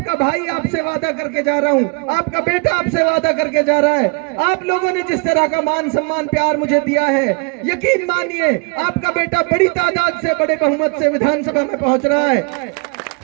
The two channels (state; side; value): quieter; left; 33.1 dB